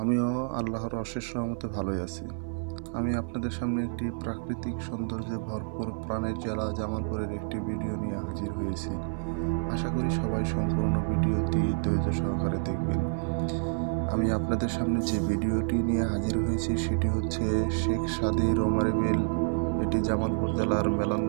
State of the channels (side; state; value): left; silent; 59 dB below the other